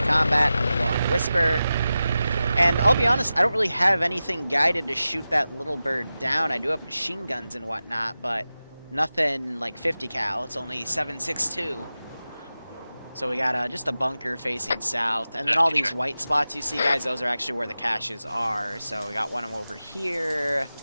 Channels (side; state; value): both; inverted; correlation -0.94